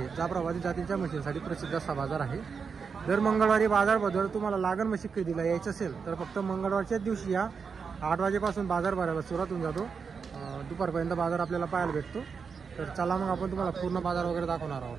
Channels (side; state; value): left; quieter; 5.7 dB